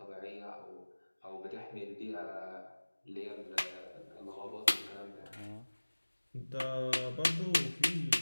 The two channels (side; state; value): both; inverted; correlation -1.00